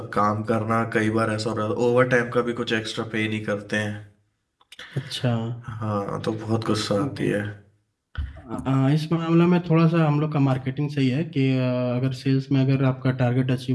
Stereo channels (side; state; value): both; identical; correlation 1.00